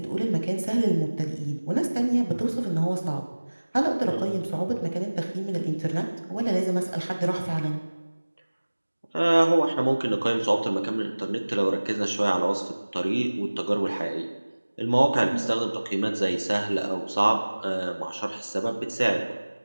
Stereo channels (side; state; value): both; inverted; correlation -1.00